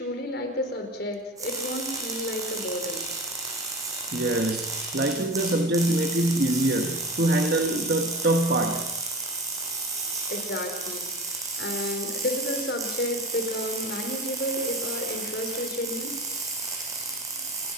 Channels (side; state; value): both; normal; correlation 0.32